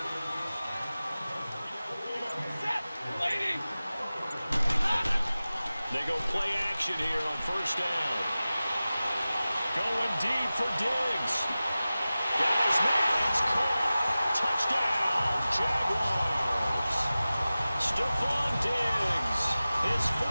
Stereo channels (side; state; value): both; inverted; correlation -0.96